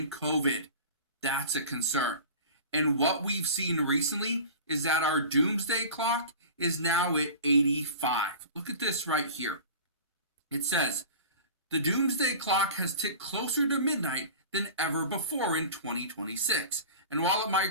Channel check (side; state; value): both; inverted; correlation -0.37